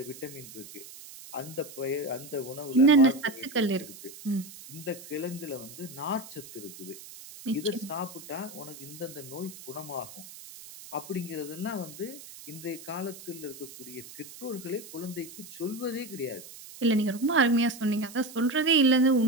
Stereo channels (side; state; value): right; noise; hiss, 16 dB below the sound